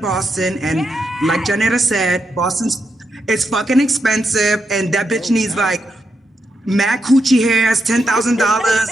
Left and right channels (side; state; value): both; normal; correlation 0.83